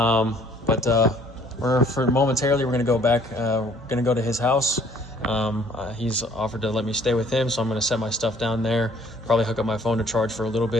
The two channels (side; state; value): both; normal; correlation 0.58